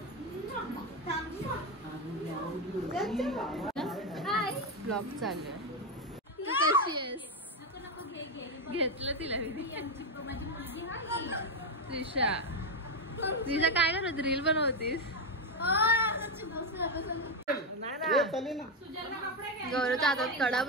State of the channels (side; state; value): both; normal; correlation 0.08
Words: ब्लॉग चालू आहे. तू कशी आहेस? घेतलं तिला मी. त्रिशा त्रिशा काय करत रील बनवतीस? गौरवच्या हातात कडा